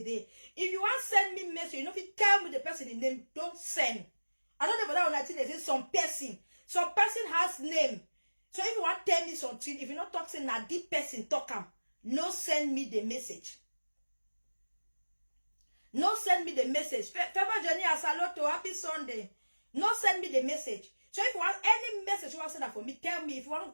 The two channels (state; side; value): inverted; both; correlation -1.00